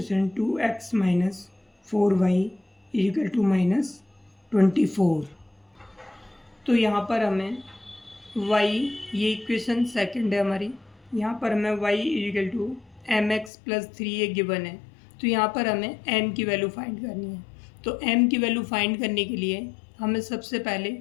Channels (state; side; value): drops out; right; at 13.5 s